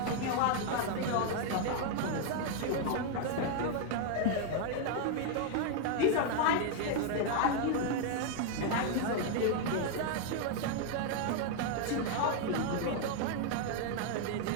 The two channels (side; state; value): both; different; correlation 0.00